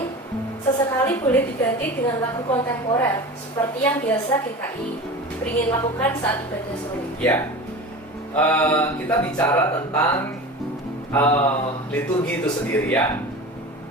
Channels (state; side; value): normal; both; correlation 0.32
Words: sesekali boleh diganti dengan lagu kontemporer seperti yang biasa GKI beringin lakukan saat ibadah sore? Ya, kita bicara tentang liturgi itu sendiri ya.